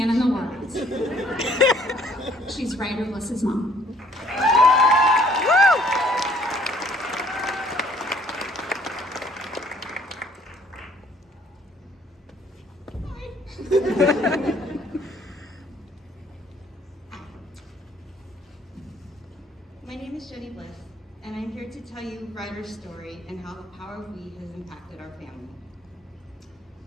in the world. She's Ryder Bliss's mom. My name is Jenny Bliss, and I'm here to tell you Ryder's story and how the power of we has impacted our family.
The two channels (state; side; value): normal; both; correlation 0.61